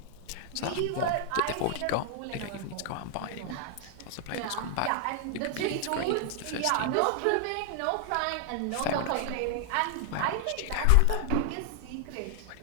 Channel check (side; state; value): both; different; correlation 0.00